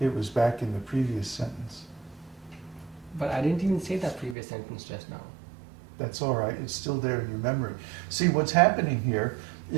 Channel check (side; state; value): left; drops out; at 4.4 s